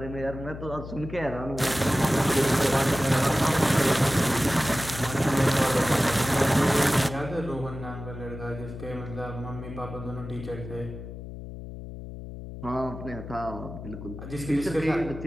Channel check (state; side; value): noise; left; hum, 11 dB below the sound